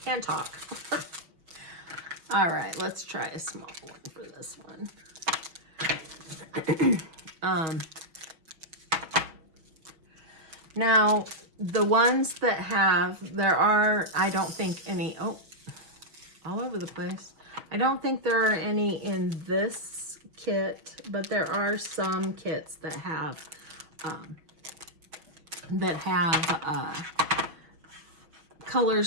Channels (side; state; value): left; late; 6.0 ms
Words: can't talk. All right, let's try a small one for this one. Now, the ones that have, there are, I don't think any, oh, all over the place. I don't think there are any in this kit, but there are some kits that have